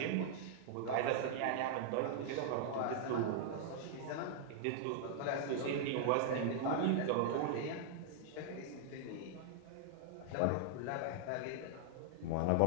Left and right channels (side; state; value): both; different; correlation -0.01